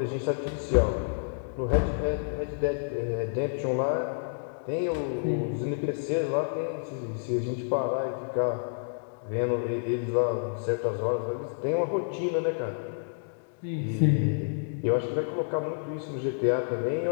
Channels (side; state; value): right; silent; digital silence